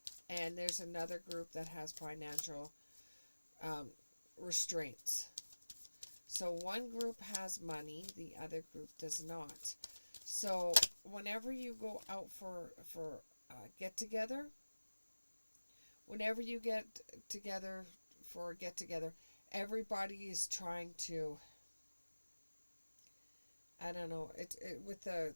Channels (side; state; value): both; inverted; correlation -1.00